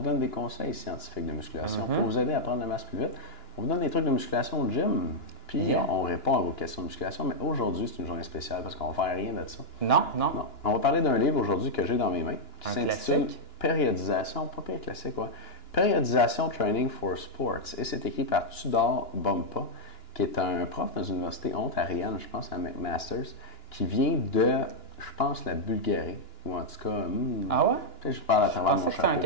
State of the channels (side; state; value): right; late; 2.9 ms